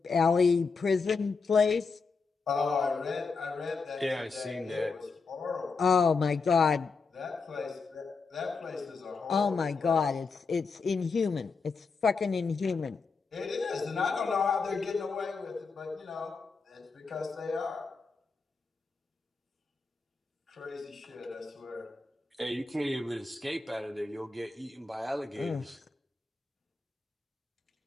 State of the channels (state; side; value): quieter; right; 4.6 dB